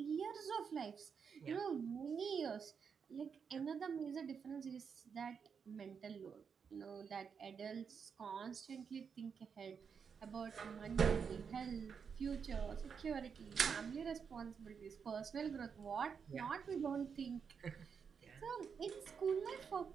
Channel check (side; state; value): left; quieter; 6.4 dB